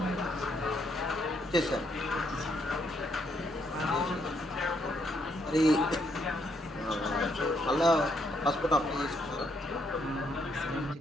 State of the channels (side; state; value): both; normal; correlation 0.74